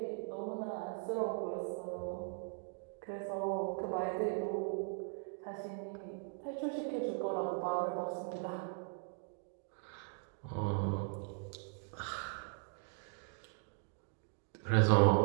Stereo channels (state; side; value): silent; left; 52 dB below the other